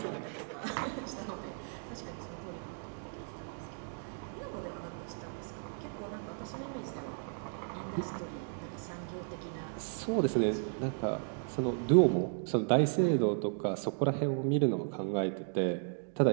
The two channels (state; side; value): silent; left; 55 dB below the other